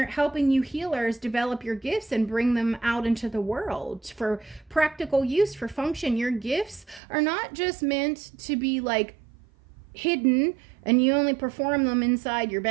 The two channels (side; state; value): left; drops out; at 7.0 s